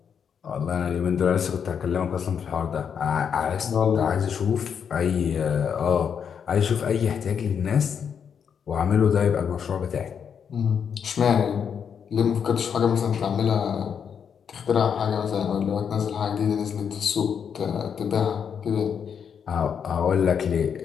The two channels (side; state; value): right; quieter; 7.4 dB